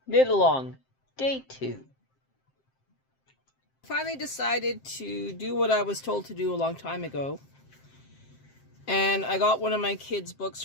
Knit Along, Day 2. Finally decided to do what I was told to do a long time ago. And I got one of my kids' books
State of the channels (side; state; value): right; late; 7.6 ms